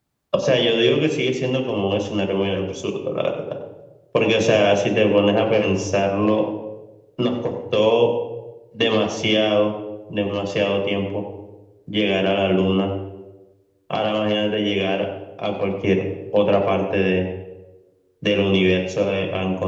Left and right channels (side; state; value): both; identical; correlation 1.00